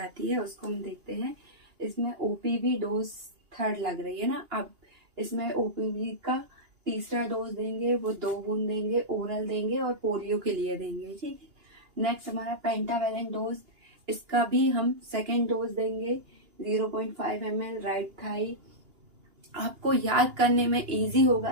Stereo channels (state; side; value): late; left; 2.8 ms